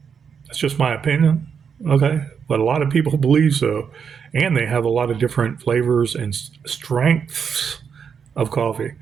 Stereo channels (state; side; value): quieter; left; 6.8 dB